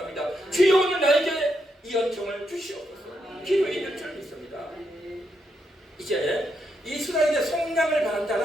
주여 오늘 나에게 이 은총을 주시옵소서. 기도해야 될 줄 믿습니다. 이제 이스라엘의 속량을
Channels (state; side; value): normal; both; correlation 0.80